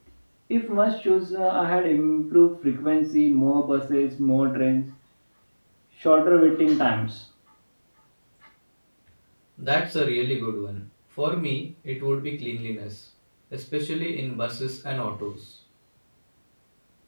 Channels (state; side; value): inverted; both; correlation -1.00